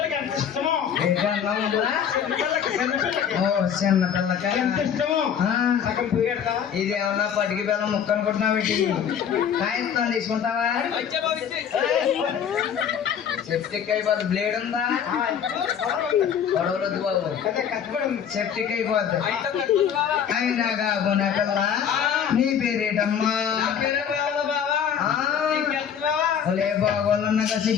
ఎంత ఇష్టమో. ఏంటి అన్నం ఉందా? చిన్నపిల్లకి ఓ చిన్న పిల్లకాయ ఎంత ఇష్టమో. సగం పోయేడతావా? ఇదేమన్నా పటికి బెల్లం ముక్క అనుకుంటున్నావు ఏంటి? కాయస్తాను తీసుకుంటావా? సెప్టిక్ అయిపోద్ది. బ్లేడ్ ఉందా? గొడవలొద్దు బాబు, అదే కష్టపడి ఉంది. సెప్టిక్ అయిపోద్ది. అయితే కట్టుకుంటావా? అయినా కాకుండా పిల్ల నీ పేరేటమ్మా? నా పేరే బావా బావా. ఆ. నీకెంతరావా? ఒలే బాగోళ్ళన్నాక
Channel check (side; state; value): right; quieter; 8.1 dB